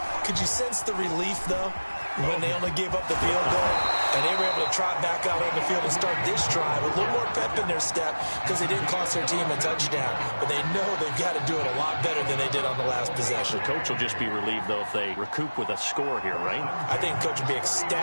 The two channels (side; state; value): both; inverted; correlation -1.00